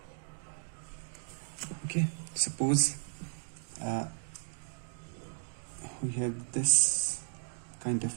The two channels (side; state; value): left; silent; digital silence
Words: Okay, suppose we have this kind of